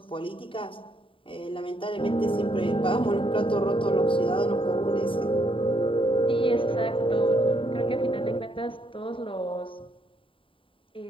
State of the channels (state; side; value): late; right; 0.25 ms